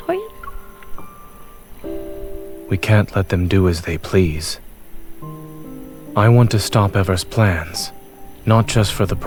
We can't let them do as they please. I want to stop Ever's plans, not just for the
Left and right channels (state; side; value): identical; both; correlation 1.00